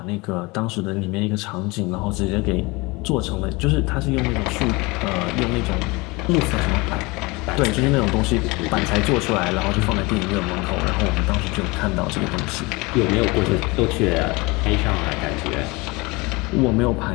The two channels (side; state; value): right; quieter; 24.8 dB